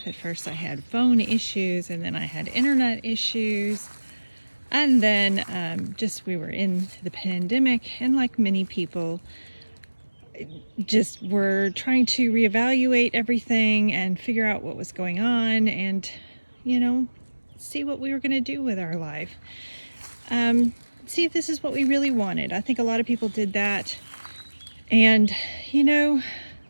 At first I had phone issues, and then I had internet issues. And then we were in the pandemic, and like many people, just were trying to reevaluate everything and figure out what was going on and, see what we were going to do with our life. See if this is what we really wanted. I think a lot of people did that. And,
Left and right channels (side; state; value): both; inverted; correlation -1.00